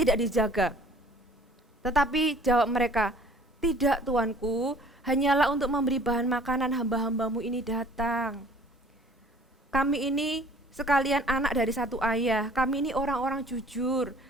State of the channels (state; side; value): normal; both; correlation 0.53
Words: dijaga." Tetapi jawab mereka, "Tidak Tuanku, hanyalah untuk memberi bahan makanan hamba-hambamu ini datang. Kami ini sekalian anak dari satu ayah, kami ini orang-orang jujur,